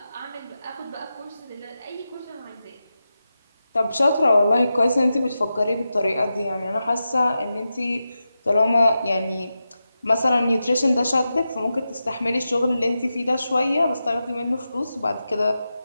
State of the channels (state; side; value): inverted; both; correlation -0.91